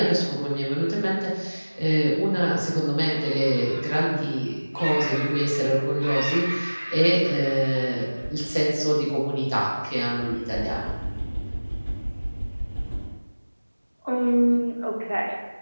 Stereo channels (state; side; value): inverted; both; correlation -1.00